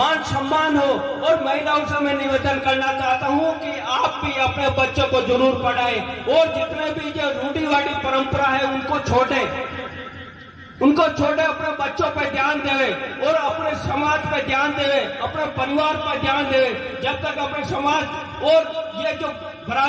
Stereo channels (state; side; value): identical; both; correlation 1.00